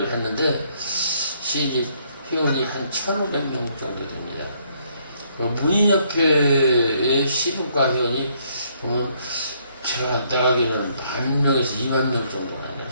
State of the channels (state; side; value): inverted; both; correlation -0.69